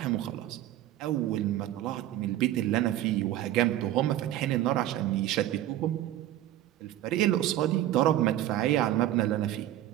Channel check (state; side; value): quieter; left; 13.4 dB